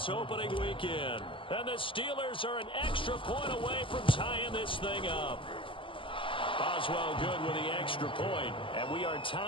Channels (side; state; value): right; late; 0.25 ms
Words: opening weekend. And the Steelers are an extra point away from tying this thing up. Boswell good with the extra point, and we are